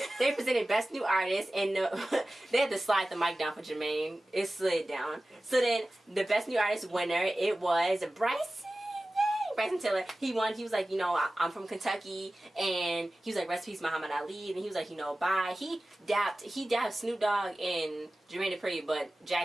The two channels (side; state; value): both; normal; correlation 0.96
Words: they presented Best New Artist, and they had to slide the mic down for Jermaine. It slid down. So then the Best New Artist winner, it was Bryson Tiller. He won. He was like, you know, I'm from Kentucky, and he was like, rest in peace, Muhammad Ali, and he was like, you know, bye. He dapped Snoop Dogg and Jermaine Dupri, but